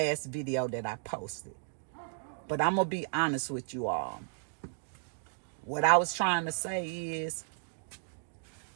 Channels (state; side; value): silent; left; digital silence